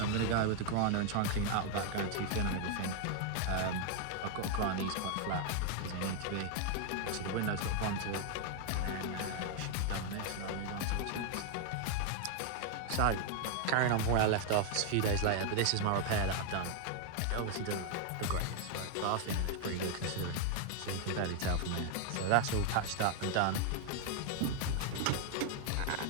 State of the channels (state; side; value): different; both; correlation 0.00